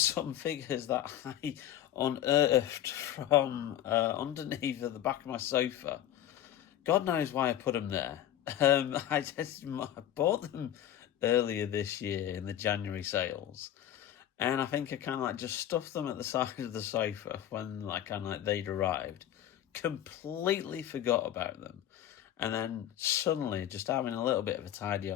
figures that I unearthed from underneath the back of my sofa. God knows why I put them there. I bought them earlier this year in the January sales, and I think I kind of like just stuffed them at the side of the sofa when they'd arrived. Completely forgot about them. And then suddenly, just having a little bit of a tidy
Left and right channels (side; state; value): right; quieter; 11.6 dB